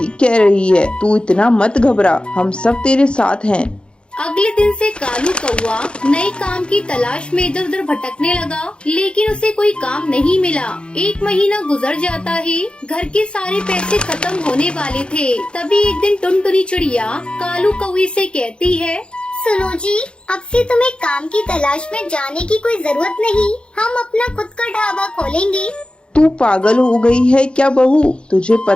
कह रही है। तू इतना मत घबरा, हम सब तेरे साथ हैं। अगले दिन से कालू कौआ नए काम की तलाश में इधर उधर भटकने लगा, लेकिन उसे कोई काम नहीं मिला। 1 महीना गुजर जाता है। घर के सारे पैसे खत्म होने वाले थे। तभी एक दिन टुनटुनी चिड़िया कालू कौवे से कहती है, सुनो जी, अब से तुम्हें काम की तलाश में जाने की कोई जरूरत नहीं। हम अपना खुद का ढाबा खोलेंगे। तू पागल हो गई है क्या बहू? तुझे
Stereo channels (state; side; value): late; right; 0.055 ms